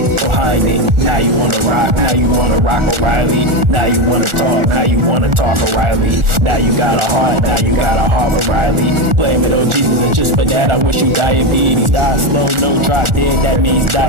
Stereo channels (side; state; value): left; late; 1.4 ms